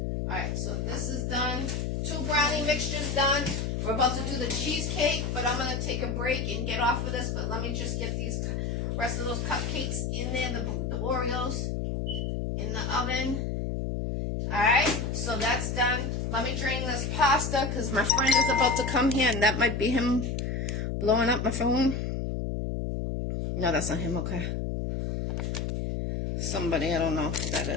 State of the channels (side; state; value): left; noise; hum, 1 dB below the sound